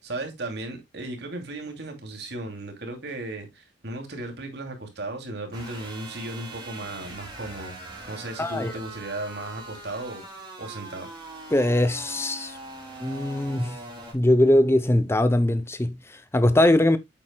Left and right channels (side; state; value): both; normal; correlation 0.82